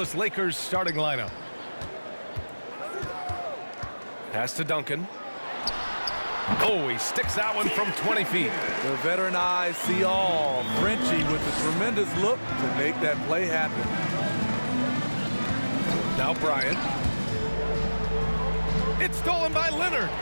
Lakers starting lineup. Pass to Duncan. Oh, he sticks that one from 20 feet. The veteran eyes see all. Frenchie with a tremendous look to make that play happen. Now Bryant. It's stolen by Leonard.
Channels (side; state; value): both; inverted; correlation -1.00